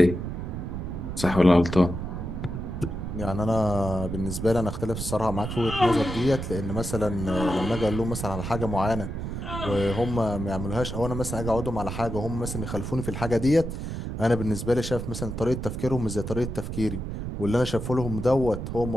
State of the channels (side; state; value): right; noise; rumble, 5 dB below the sound